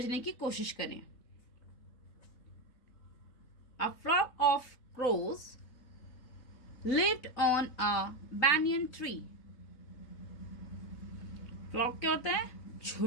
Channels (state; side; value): late; right; 3.7 ms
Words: की कोशिश करें। A flock of crows lived on a banyan tree. Flock क्या होता है?